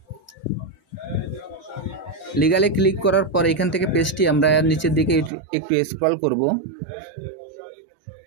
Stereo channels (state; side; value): drops out; left; at 5.3 s